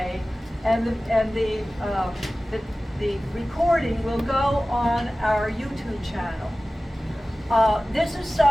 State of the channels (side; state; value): both; normal; correlation 0.97